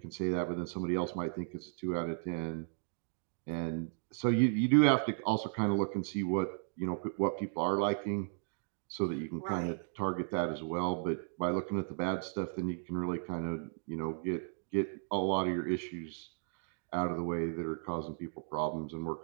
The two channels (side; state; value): left; silent; digital silence